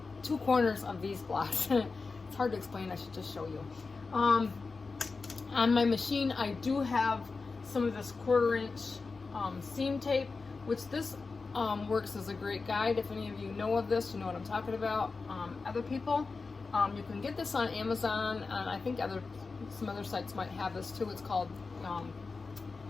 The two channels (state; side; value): quieter; right; 4.2 dB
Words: 2 corners of these blocks. It's hard to explain. I should just show you. On my machine, I do have some of this 1/4-inch seam tape, which this works as a great guide. If any of you know of this, you know what I'm talking about. Other people, you can get this on Amazon, and I think some other sites might have this too. It's called